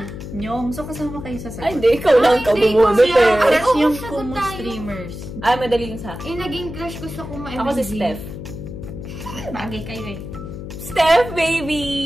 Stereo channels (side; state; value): left; noise; hum, 10 dB below the sound